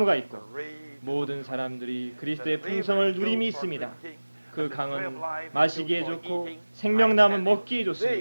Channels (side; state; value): both; inverted; correlation -1.00